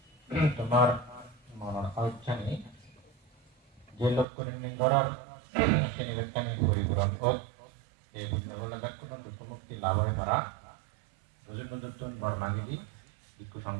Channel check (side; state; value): left; drops out; at 4.2 s